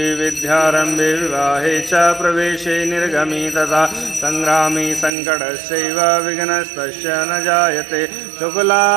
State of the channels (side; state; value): left; drops out; at 5.1 s